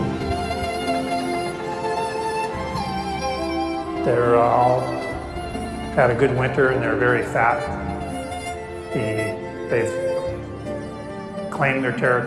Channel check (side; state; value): both; identical; correlation 1.00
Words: They're all had a good winter and they're very fat. They've claimed their